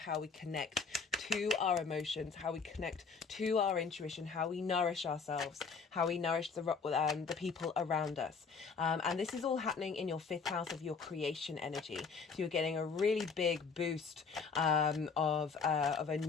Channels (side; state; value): right; quieter; 5.2 dB